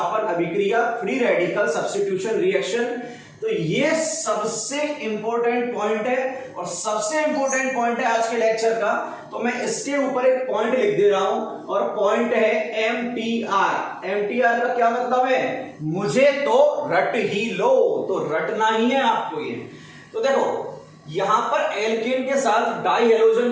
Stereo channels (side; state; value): both; identical; correlation 1.00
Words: अभिक्रिया, फ्री रेडिकल सब्स्टिट्यूशन रिएक्शन. तो ये सबसे इंपॉर्टेंट पॉइंट है और सबसे इंपॉर्टेंट पॉइंट है आज के लेक्चर का। तो मैं इसके ऊपर एक पॉइंट लिख दे रहा हूं और पॉइंट है एमटीआर। एमटीआर का क्या मतलब है? मुझे तो रट ही लो, तो रटना ही है आपको ये। तो देखो यहां पर एल्केन के साथ डाई